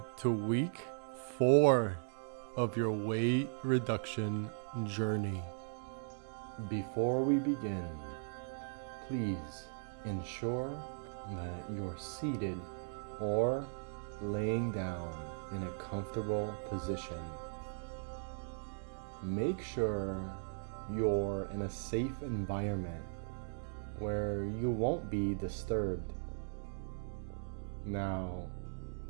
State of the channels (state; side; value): silent; left; digital silence